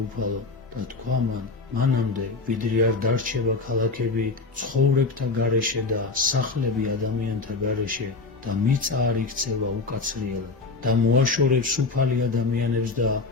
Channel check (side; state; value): right; quieter; 4.0 dB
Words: უფალო? და თქვა მან: მანამდე, ვიდრე არ დარჩება ქალაქები ცხოვრებთა გარეშე და სახლები ადამიანთა გარეშე და მიწა არ იქცევა უკაცრიელად და მოაშორებს უფალი ადამიანებს და